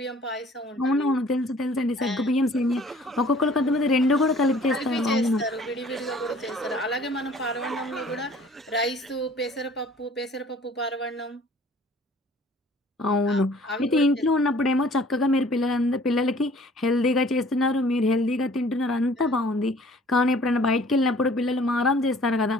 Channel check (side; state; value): both; normal; correlation 0.53